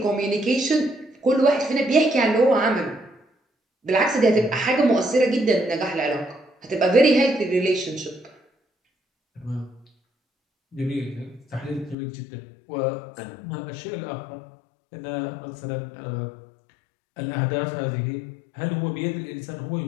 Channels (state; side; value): drops out; right; at 12.0 s